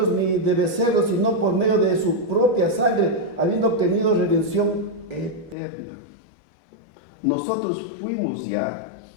ni de becerros, sino por medio de su propia sangre, habiendo obtenido redención eterna. Nosotros fuimos ya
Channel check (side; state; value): right; drops out; at 5.6 s